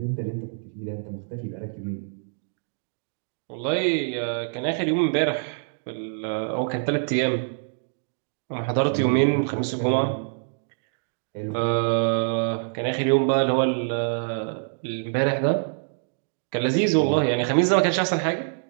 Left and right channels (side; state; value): left; silent; digital silence